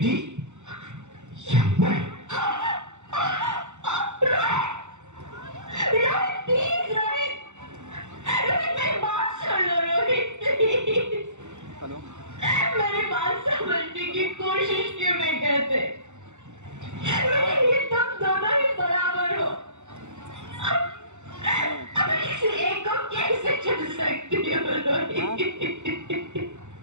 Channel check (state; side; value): late; left; 0.84 ms